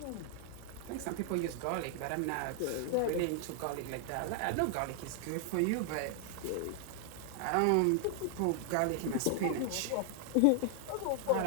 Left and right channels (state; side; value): different; both; correlation 0.00